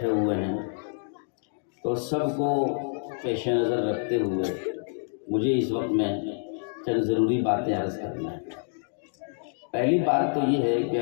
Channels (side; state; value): right; silent; digital silence